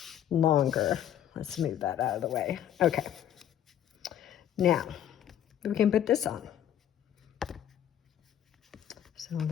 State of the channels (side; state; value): right; quieter; 10.5 dB